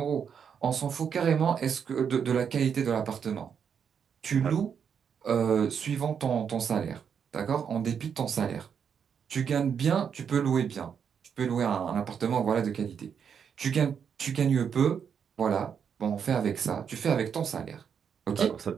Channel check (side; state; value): left; quieter; 7.3 dB